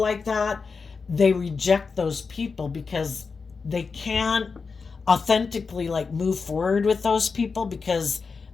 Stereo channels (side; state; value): right; quieter; 4.9 dB